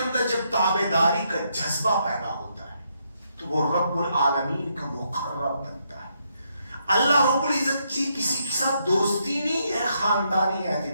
جب تابعداری کا جذبہ پیدا ہوتا ہے تو وہ رب العالمین کا مقرب بنتا ہے. اللہ رب العزت کی کسی کے ساتھ دوستی نہیں ہے خاندانی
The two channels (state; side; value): inverted; both; correlation -0.77